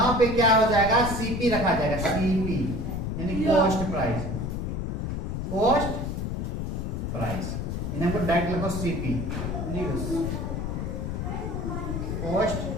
पे क्या हो जाएगा? सीपी रखा जाएगा, सीपी यानी कॉस्ट प्राइस, कॉस्ट प्राइस, इन्हें हमको डायरेक्ट लगो CP, cost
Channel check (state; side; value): noise; left; rumble, 3 dB below the sound